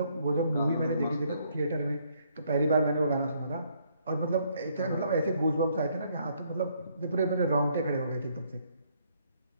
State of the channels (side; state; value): both; inverted; correlation -0.69